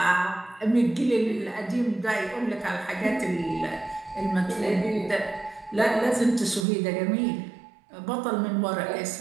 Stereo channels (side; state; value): left; drops out; at 6.7 s